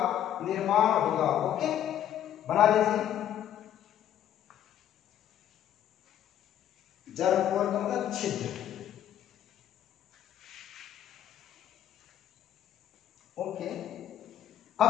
निर्माण होगा। ओके, बना लीजिए। जर्मपोर का मतलब छिद्र। ओके, अब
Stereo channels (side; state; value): right; quieter; 10.9 dB